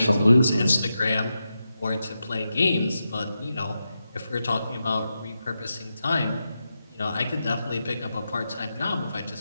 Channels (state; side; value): inverted; both; correlation -0.88